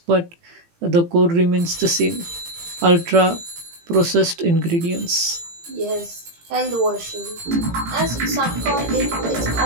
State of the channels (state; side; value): late; left; 18 ms